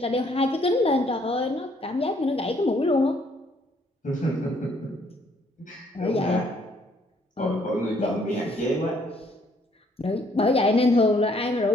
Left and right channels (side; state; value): both; normal; correlation 0.66